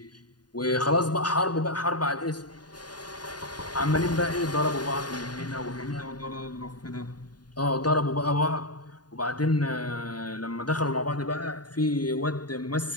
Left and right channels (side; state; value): right; late; 0.70 ms